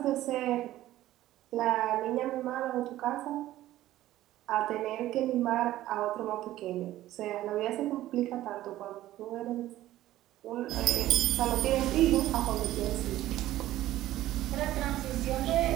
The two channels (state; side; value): quieter; left; 14.6 dB